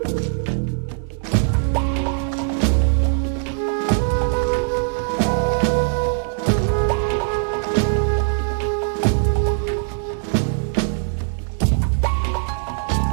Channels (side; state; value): left; silent; 59 dB below the other